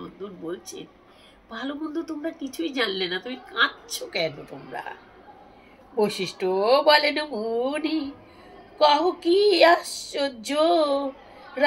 বলছে, ভালো মন্দ তোমরা কিছুই জানলে না, তুমি কাঁদছো কেন তোমরা? বৈশিষ্ট্য বলেন মুনি, কহ কি আশ্চর্য,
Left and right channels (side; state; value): both; identical; correlation 1.00